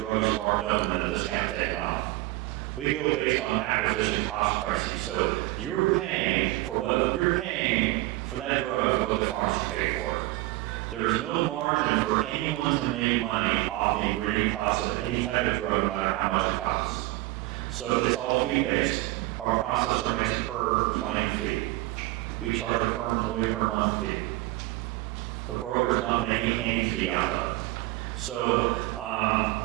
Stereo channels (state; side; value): quieter; left; 19.2 dB